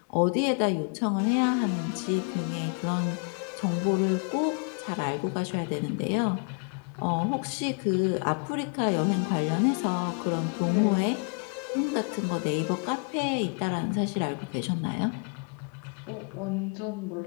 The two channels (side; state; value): right; quieter; 37.8 dB